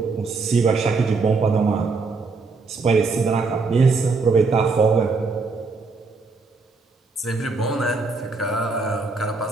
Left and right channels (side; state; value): left; quieter; 4.1 dB